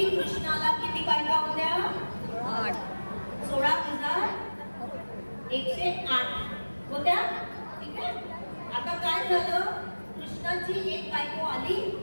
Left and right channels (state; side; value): inverted; both; correlation -1.00